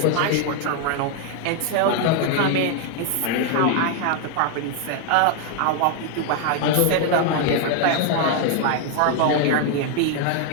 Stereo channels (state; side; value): different; both; correlation 0.00